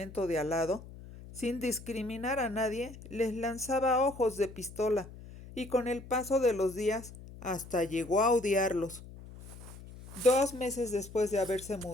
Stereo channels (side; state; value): left; noise; hum, 16 dB below the sound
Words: de al lado, sin discriminar a nadie, les lanzaba ojos de pistola, y con el paso de los días hasta llegó a odiarlos. 2 meses después de haberse